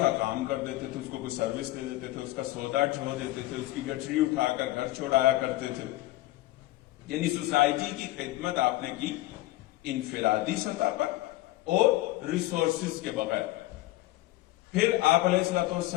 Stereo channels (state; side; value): quieter; right; 17.4 dB